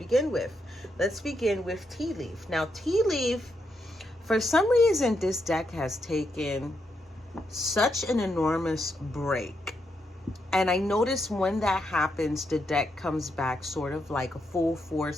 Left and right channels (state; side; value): normal; both; correlation 0.81